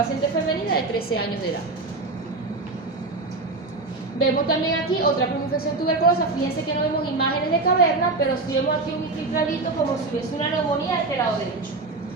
femenina de 13 años de edad. Vemos también aquí otra primoinfección tuberculosa. Fíjense que no vemos imágenes de caverna, pero sí vemos aquí un infiltradito como si hubiese una neumonía de este lado derecho.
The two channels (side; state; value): left; quieter; 3.4 dB